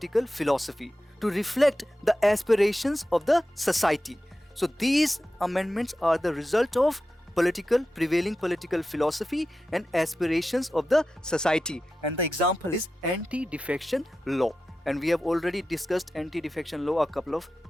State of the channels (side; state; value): both; normal; correlation 0.92